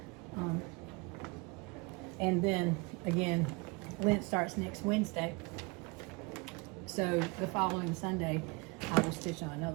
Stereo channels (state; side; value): quieter; left; 27.6 dB